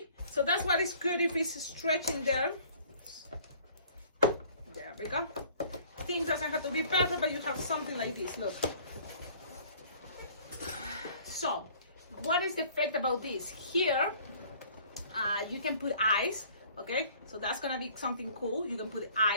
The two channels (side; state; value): both; inverted; correlation -0.54